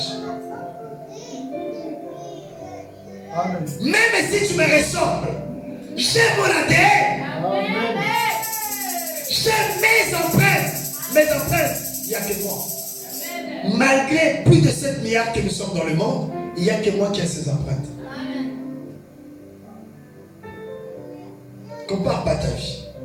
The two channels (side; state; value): both; identical; correlation 1.00